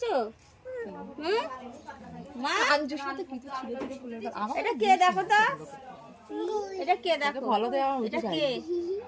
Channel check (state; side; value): identical; both; correlation 1.00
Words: মা এটা কে দেখো তো, এটা কে দেখো, ভালো দেওয়া, এটা কে?